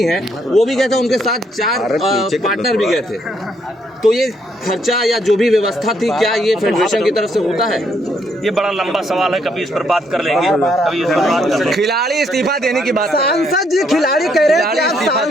हैं वो भी गए थे, उनके साथ 4 पार्टनर भी गए थे। तो ये खर्चा या जो भी व्यवस्था थी, क्या ये फेडरेशन की तरफ से होता है? ये बड़ा लंबा सवाल है, कभी इस पर बात कर लेंगे, कभी इस पर बात कर लेंगे। खिलाड़ी इस्तीफा देने की बात। सांसद जी, खिलाड़ी कह रहे हैं कि आप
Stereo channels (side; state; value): both; normal; correlation 0.72